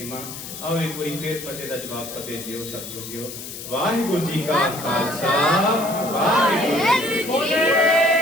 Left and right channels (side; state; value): left; noise; hiss, 10 dB below the sound